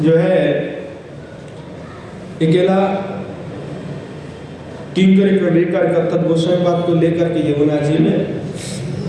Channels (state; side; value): identical; both; correlation 1.00